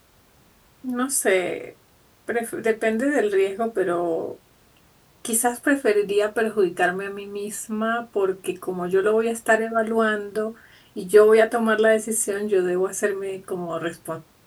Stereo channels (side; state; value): both; identical; correlation 1.00